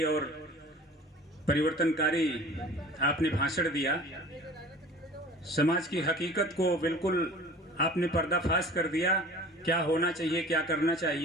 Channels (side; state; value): both; normal; correlation 0.44